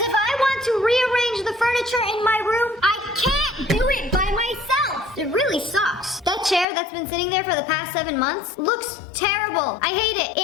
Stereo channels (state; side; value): drops out; right; at 6.7 s